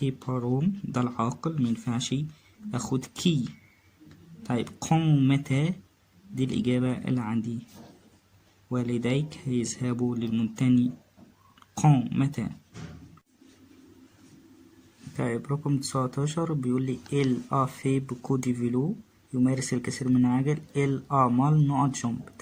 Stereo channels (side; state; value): both; identical; correlation 1.00